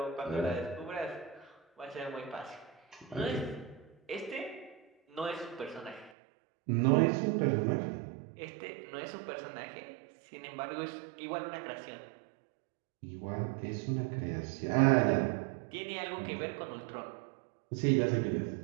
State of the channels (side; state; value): left; drops out; at 6.1 s